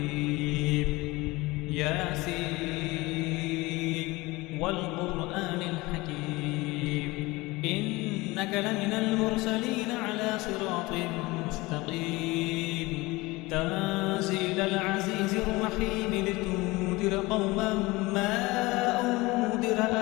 ياسين والقرآن الحكيم إنك لمن المرسلين على صراط مستقيم تنزيل العزيز الرحيم لتنذر قوما ما أنذر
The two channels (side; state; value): right; quieter; 21.9 dB